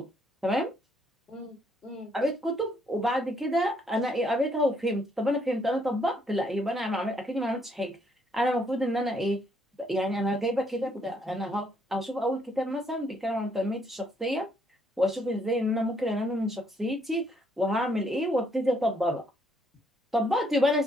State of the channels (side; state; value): both; normal; correlation 0.70